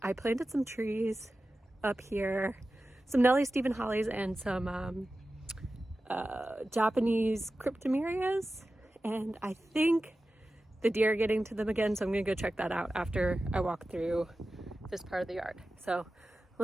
planted some trees up here, some Nellie Stephen hollies and some Japanese cryptomerias, and I think the deer are getting to them again, so I'm gonna go check that out after I walk through this part of the yard. So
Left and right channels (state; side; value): normal; both; correlation 0.94